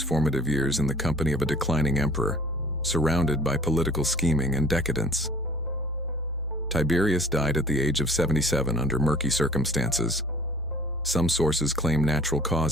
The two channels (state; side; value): normal; both; correlation 0.51